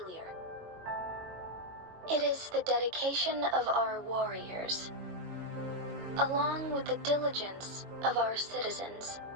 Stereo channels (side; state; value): left; late; 22 ms